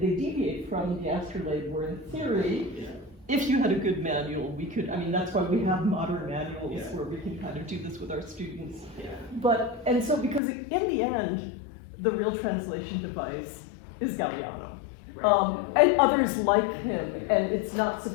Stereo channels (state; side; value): drops out; right; at 10.4 s